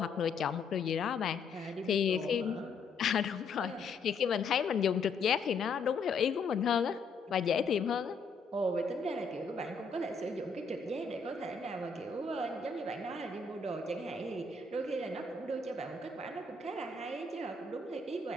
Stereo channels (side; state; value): right; quieter; 4.3 dB